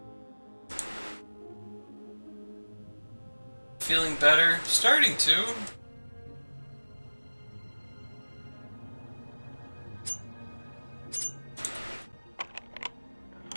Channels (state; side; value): inverted; both; correlation -1.00